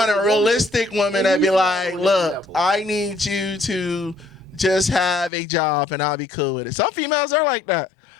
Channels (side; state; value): right; drops out; at 5.3 s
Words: a realistic woman that be like, look, I need you to just have a job and I'll be cool with it. Some females are like that.